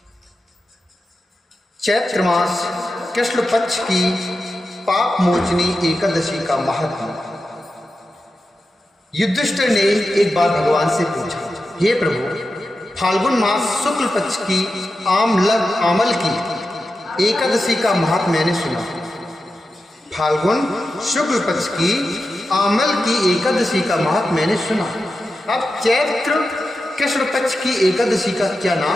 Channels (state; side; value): normal; both; correlation 0.91